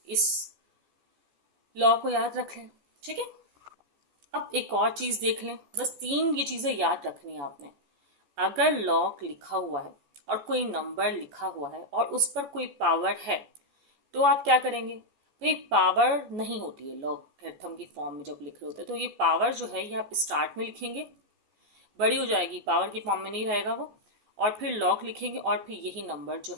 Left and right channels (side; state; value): left; late; 14 ms